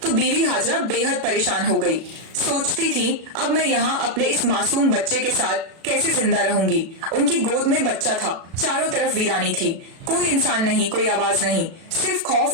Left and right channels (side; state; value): left; late; 36 ms